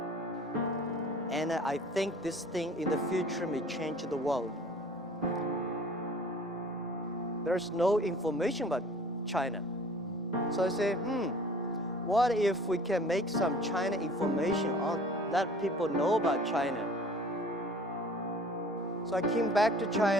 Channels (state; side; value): normal; both; correlation 0.48